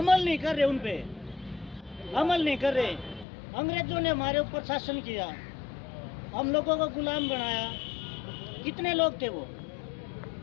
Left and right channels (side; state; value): right; drops out; at 3.2 s